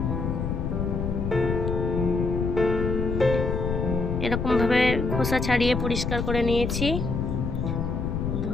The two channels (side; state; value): left; noise; rumble, 1 dB below the sound